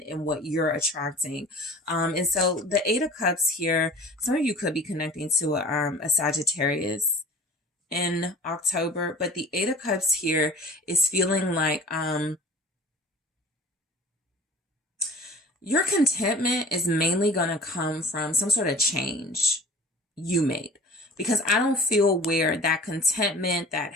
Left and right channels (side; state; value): both; normal; correlation 0.43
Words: and what you're attracting. And so the Eight of Cups here, some of you could be connecting to a Sagittarius in October, but the Eight of Cups here is feeling like, your contentment is mainly going to come from some sort of change you made, because I don't feel where that contentment, that